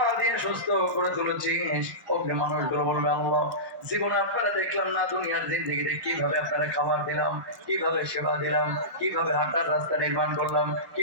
দিয়ে সুস্থ করে তুলেছিস। ওকে মানুষগুলো বলবে, আল্লাহ জীবনে আপনারা দেখলাম না দুনিয়ার জিন্দেগিতে কিভাবে আপনারা খাবার দিলাম, কিভাবে সেবা দিলাম, কিভাবে হাঁটার রাস্তা নির্মাণ করলাম,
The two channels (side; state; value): left; late; 1.1 ms